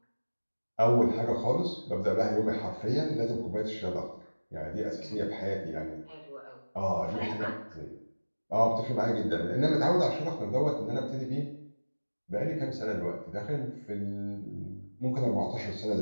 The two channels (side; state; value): both; inverted; correlation -1.00